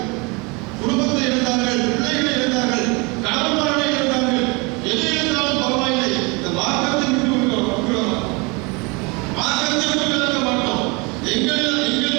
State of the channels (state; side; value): quieter; left; 28.2 dB